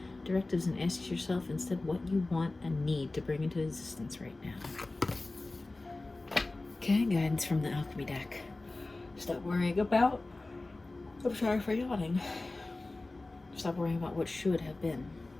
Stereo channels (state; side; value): quieter; right; 3.1 dB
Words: directives and ask yourself instead what you want and need to bring into existence right now. Okay, guidance from the Alchemy deck. Stop worrying about... I'm sorry for yawning. Stop worrying about what should have been.